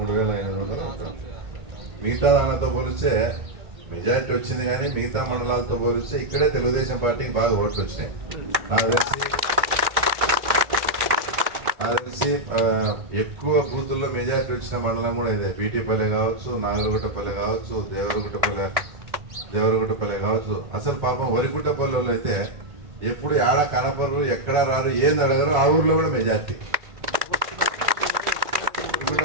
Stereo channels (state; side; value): late; left; 1.6 ms